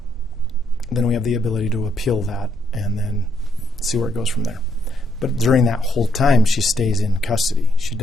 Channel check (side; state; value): both; normal; correlation 0.74